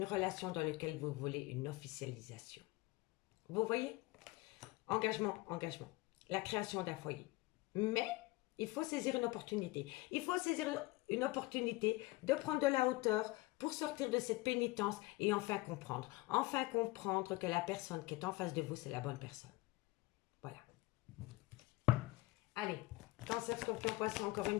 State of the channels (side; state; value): right; quieter; 21.4 dB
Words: relation dans laquelle vous voulez une officialisation. Vous voyez? Engagement, engagement. La création d'un foyer. Mais il faut saisir une opportunité. Il faut saisir une opportunité de prendre de la hauteur pour sortir de cette pénitence et enfin comprendre. Enfin comprendre que la personne qui est en face de vous, c'est la bonne personne. Voilà. Allez, cancer, scorpion, poisson, encore une